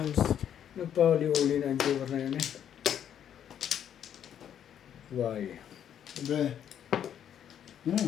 Nagpahuli-uli na ang joker na yun eh. Why? Sabi,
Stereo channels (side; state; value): right; quieter; 9.5 dB